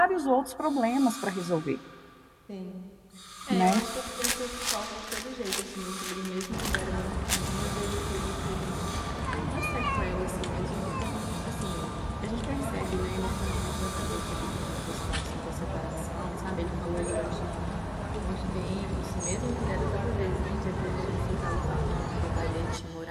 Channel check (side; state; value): both; identical; correlation 1.00